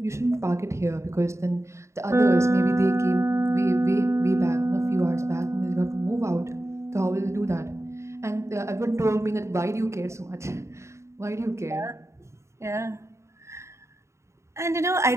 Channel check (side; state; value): left; late; 0.14 ms